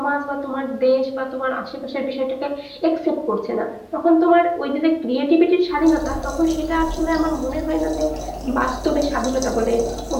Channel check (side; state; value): both; identical; correlation 1.00